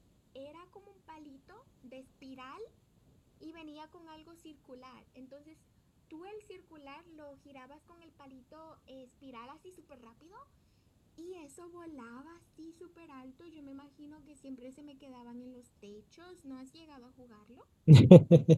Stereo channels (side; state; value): both; identical; correlation 1.00